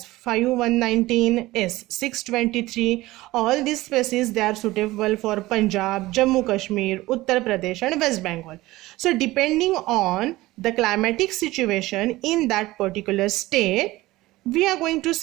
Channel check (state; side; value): quieter; left; 18.4 dB